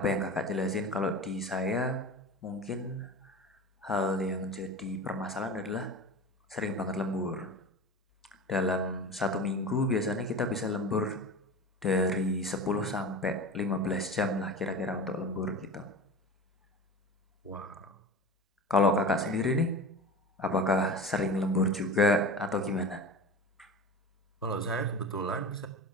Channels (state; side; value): normal; both; correlation 0.31